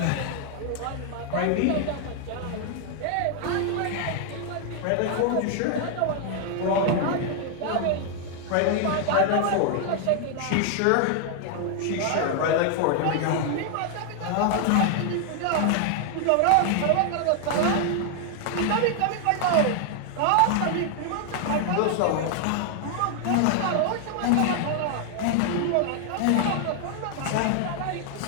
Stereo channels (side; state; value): both; different; correlation 0.00